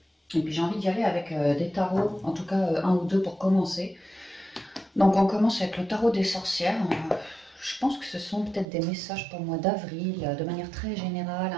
Et puis j'ai envie d'y aller avec des tarots, en tout cas un ou deux pour commencer. Donc on commence avec le tarot des sorcières. Je pense que ce sont peut-être des messages pour le mois d'avril, de manière très générale,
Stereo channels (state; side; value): drops out; left; at 8.7 s